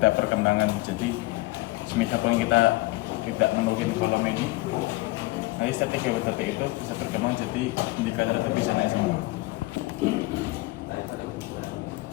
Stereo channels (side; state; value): right; quieter; 20.8 dB